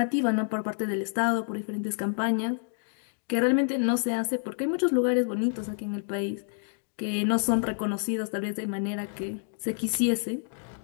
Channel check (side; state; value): right; silent; digital silence